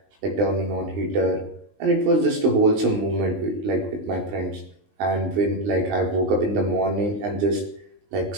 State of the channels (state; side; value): late; left; 19 ms